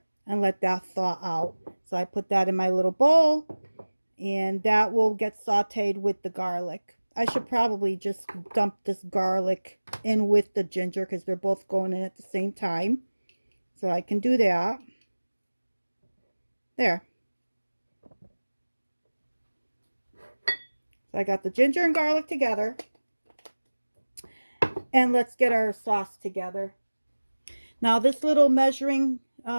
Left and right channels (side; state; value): both; inverted; correlation -1.00